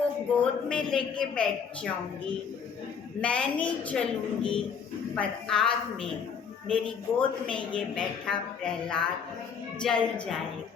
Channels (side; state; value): right; quieter; 6.6 dB